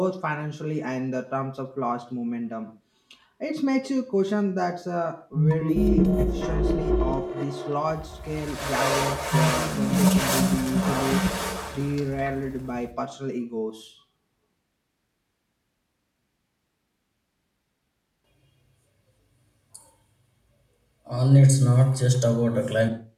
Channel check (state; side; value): identical; both; correlation 1.00